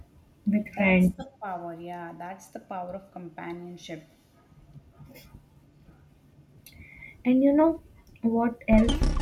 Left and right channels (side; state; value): both; identical; correlation 1.00